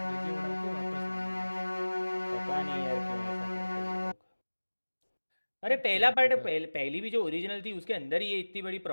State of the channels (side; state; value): both; inverted; correlation -1.00